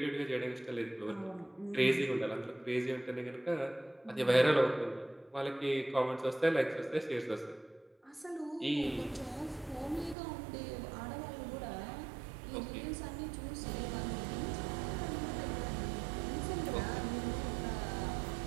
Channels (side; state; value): left; drops out; at 10.2 s